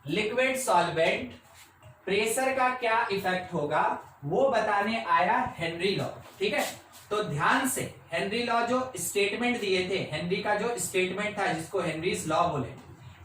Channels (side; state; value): both; identical; correlation 1.00